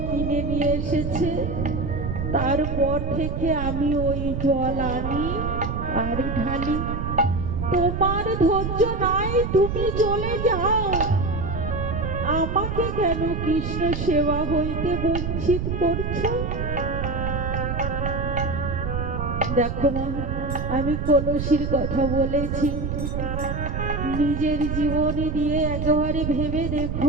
কিনে নিয়ে এসেছে। তারপর থেকে আমি ওই জল আনি আর ঢালি। তোমার ধৈর্য নাই, তুমি চলে যাও। আমাকে কেন কৃষ্ণ সেবা হইতে বঞ্চিত করছো? দেখো মা, আমি কলসির কথা বলেছি, নিজের জীবনে দিয়ে একেবারে ভেবে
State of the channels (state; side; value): noise; right; rumble, 3 dB below the sound